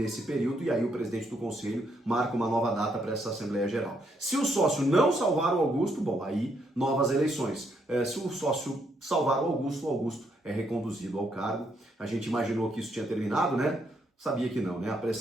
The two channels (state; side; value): normal; both; correlation 0.75